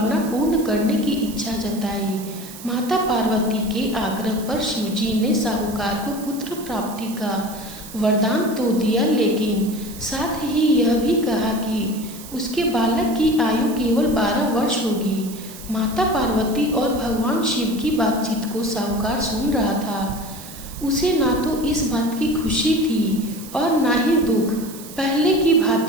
पूर्ण करने की इच्छा जताई। माता पार्वती के आग्रह पर शिवजी ने साहूकार को पुत्र प्राप्ति का वरदान तो दिया, लेकिन साथ ही यह भी कहा कि उसके बालक की आयु केवल 12 वर्ष होगी। माता पार्वती और भगवान शिव की बातचीत को साहूकार सुन रहा था। उसे ना तो इस बात की खुशी थी और ना ही दुख। पहले की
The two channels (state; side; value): noise; right; hiss, 15 dB below the sound